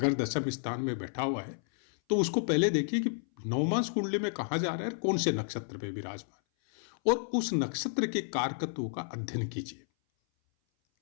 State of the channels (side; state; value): right; silent; 57 dB below the other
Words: दशम स्थान में बैठा हुआ है तो उसको पहले देखिए कि नवमांश कुंडली में कहाँ जा रहा है, कौन से नक्षत्र पे विराजमान, और उस नक्षत्र के कारकत्वों का अध्ययन कीजिए।